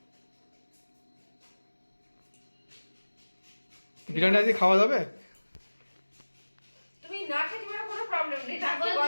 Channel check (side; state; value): both; inverted; correlation -1.00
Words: বিরিয়ানি আজকে খাওয়া যাবে? তুমি না খেতে পারো কোনো প্রবলেম নেই, নাকি